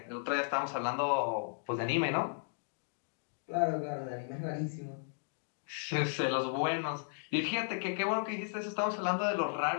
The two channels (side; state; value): right; silent; digital silence